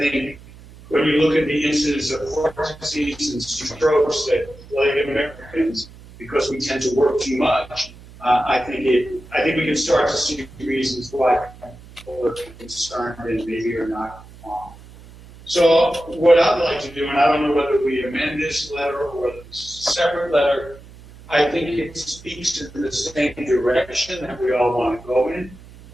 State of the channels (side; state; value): right; noise; hum, 20 dB below the sound